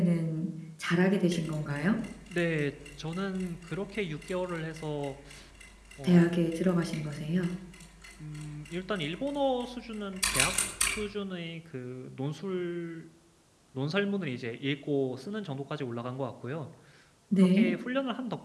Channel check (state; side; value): identical; both; correlation 1.00